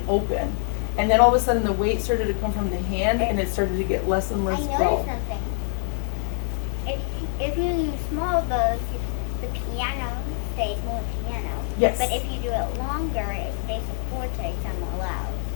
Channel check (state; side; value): silent; right; 62 dB below the other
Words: open. And then all of a sudden the weight started to come from the hand, and it started to get less and I less noticed bow. something. If you use small bows, the piano stays more piano. Yes. But if you do it longer, it stays a forte somewhat loud.